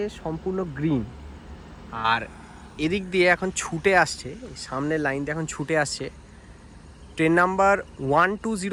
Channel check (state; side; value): identical; both; correlation 1.00